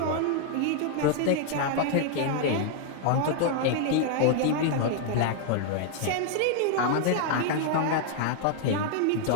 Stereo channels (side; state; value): both; different; correlation 0.00